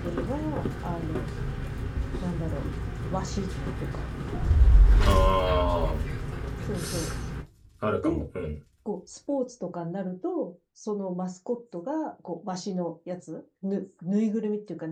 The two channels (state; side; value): identical; both; correlation 1.00